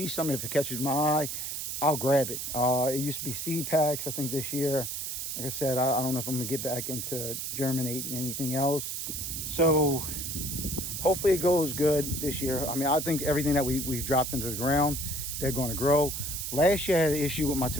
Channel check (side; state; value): right; noise; hiss, 4 dB below the sound